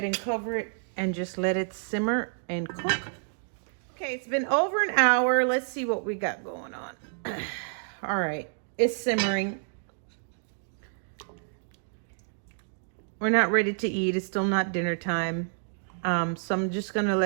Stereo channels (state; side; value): silent; left; digital silence